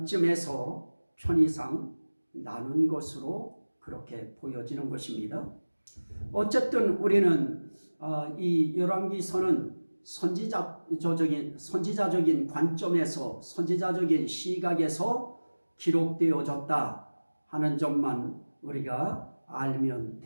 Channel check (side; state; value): both; inverted; correlation -1.00